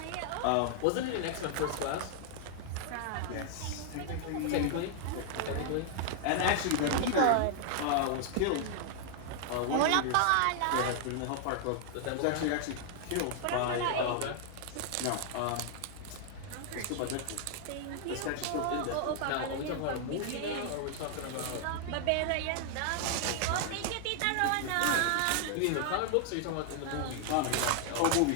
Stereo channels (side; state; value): both; different; correlation 0.00